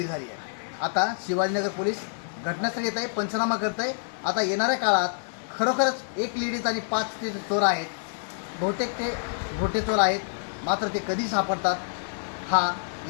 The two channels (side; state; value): right; silent; digital silence